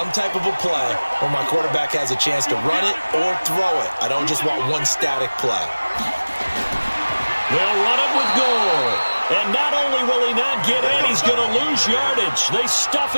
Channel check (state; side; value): inverted; both; correlation -1.00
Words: type of a play where my quarterback has a chance to run it or throw it. I don't just want one static play. They'll run it with Gore. And not only will he not get in, he's going to lose yardage. They